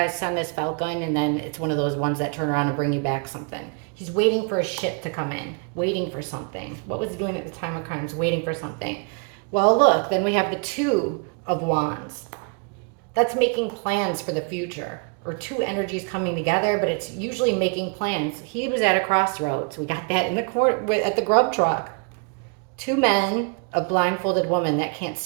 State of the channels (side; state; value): left; quieter; 35.4 dB